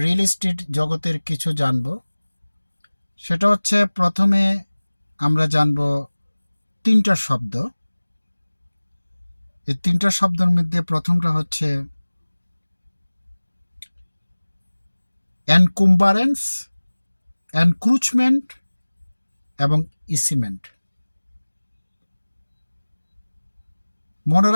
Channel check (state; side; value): inverted; both; correlation -1.00